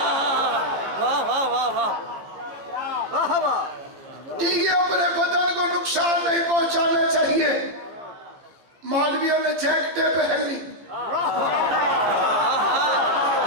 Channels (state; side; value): late; left; 14 ms